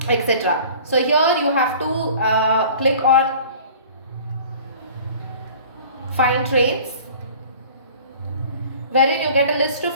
etc. So here you have to click on find trains, wherein you get a list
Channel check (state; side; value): inverted; both; correlation -0.46